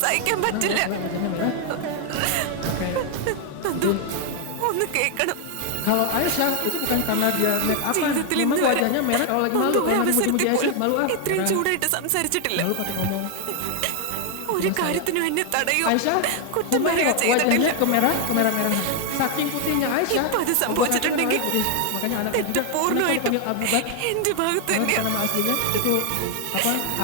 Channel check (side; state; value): both; different; correlation 0.00